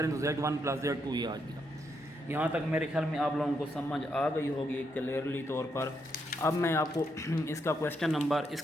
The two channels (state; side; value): normal; both; correlation 0.78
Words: तो Z1 प्लस Z2 ये आ गया। यहाँ तक मेरे ख्याल में आप लोगों को समझ आ गई होगी क्लियरली तौर पर। अब मैं आपको इसका क्वेश्चन नंबर,